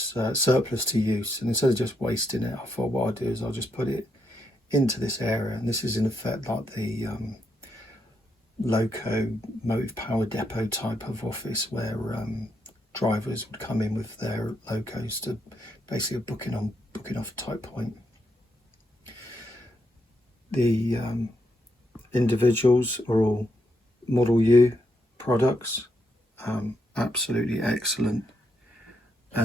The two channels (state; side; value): normal; both; correlation 0.79